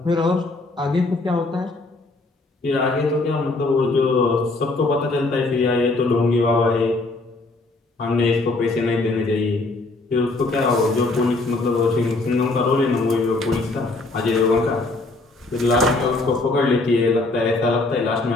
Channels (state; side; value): quieter; right; 3.1 dB